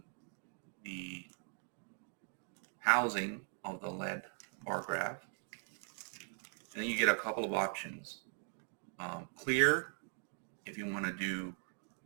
the housing of the lead bar graph, and then you get a couple of options. Clear, if you want to do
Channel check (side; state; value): left; silent; 51 dB below the other